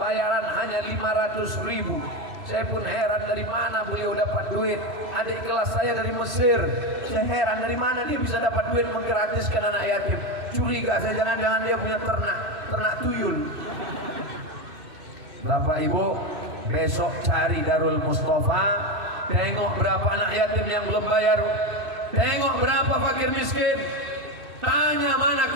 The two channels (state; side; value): late; left; 2.6 ms